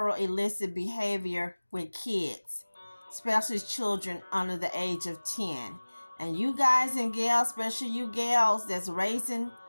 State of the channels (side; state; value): both; inverted; correlation -1.00